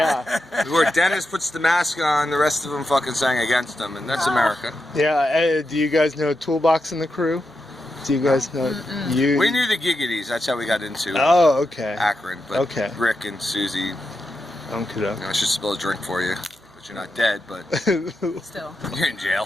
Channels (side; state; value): right; noise; hum, 30 dB below the sound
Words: Where Dennis puts the mask on, the rest of them fucking sang against him, and that's America. Yeah. Do you guys know Toolbox and the Crew? Do you guys know? You. We knew the Giggities. That's how we got into Oh, okay. Akron. But Okay. Rick and Susie. Okay. I should spill a drink for you, but you're not dead. But Still. you're in